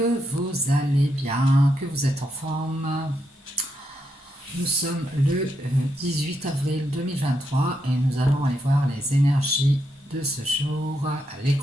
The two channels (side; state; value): both; normal; correlation 0.81